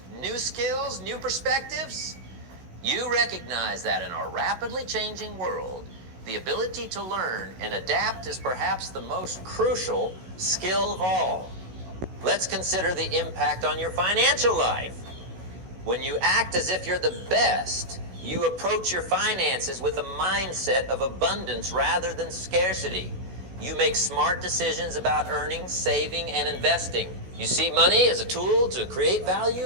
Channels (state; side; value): late; left; 16 ms